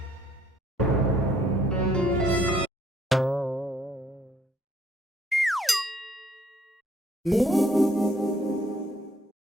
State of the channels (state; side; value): normal; both; correlation 0.64